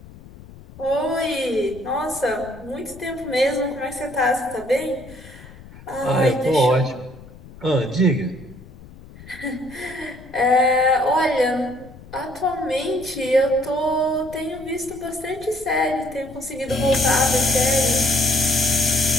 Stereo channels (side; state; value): left; noise; rumble, 19 dB below the sound